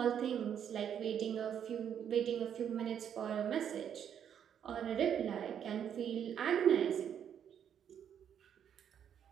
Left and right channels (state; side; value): quieter; left; 8.8 dB